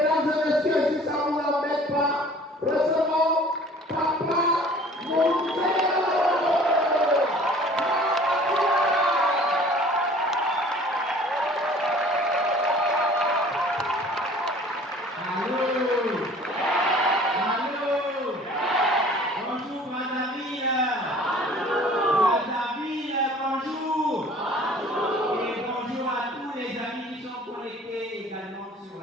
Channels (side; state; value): both; normal; correlation 0.49